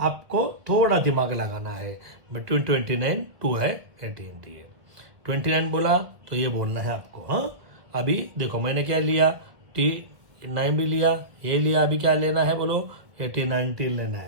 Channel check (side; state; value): left; late; 1.7 ms